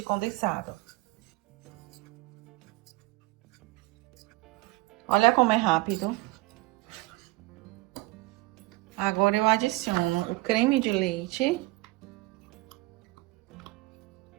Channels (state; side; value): quieter; left; 21.2 dB